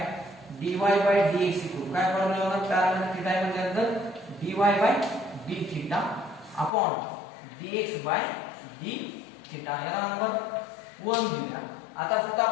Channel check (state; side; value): drops out; right; at 6.7 s